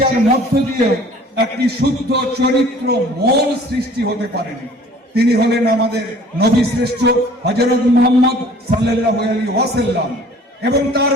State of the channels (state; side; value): normal; both; correlation 0.51